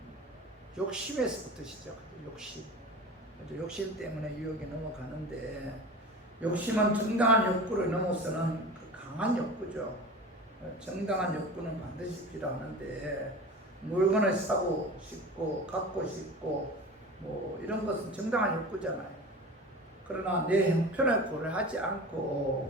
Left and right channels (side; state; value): both; normal; correlation 0.34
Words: 욕심에서부터 시작하죠. 욕심. 욕심 때문에 유혹에 넘어가는데 욕심은 정당한 욕구를 넘어서는 그 강한 욕구죠. 정당한 욕구는 반드시 필요하는데 물건을 사고 싶고 갖고 싶고 뭐 이런 것은 정당한 욕구잖아요. 그러나 내 형편을 고려하지